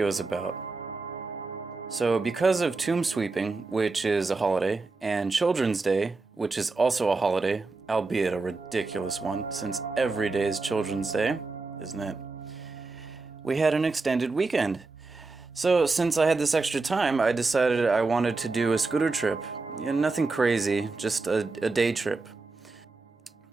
is about. So because of Tomb Sweeping, which is a holiday, and Children's Day, which is also a holiday, albeit a ridiculous one, since every day is Children's Day, isn't it? We had an extended weekend. So since I had this extra time, I decided I wanted to do a scooter trip. Yeah, nothing crazy, just a day trip.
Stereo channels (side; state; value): left; quieter; 3.8 dB